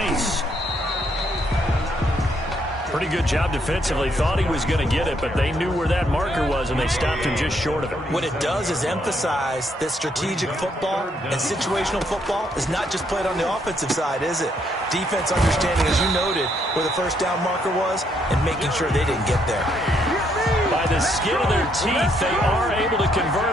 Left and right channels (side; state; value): both; normal; correlation 0.72